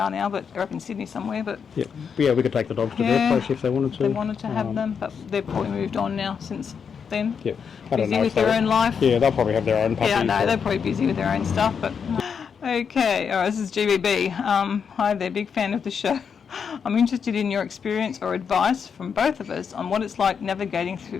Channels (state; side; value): quieter; right; 6.6 dB